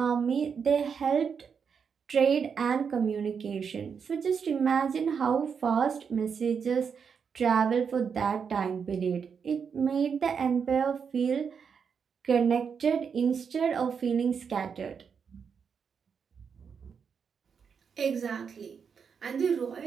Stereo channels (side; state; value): left; quieter; 6.5 dB